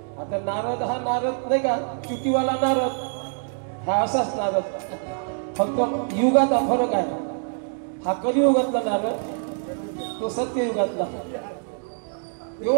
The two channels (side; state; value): left; silent; 62 dB below the other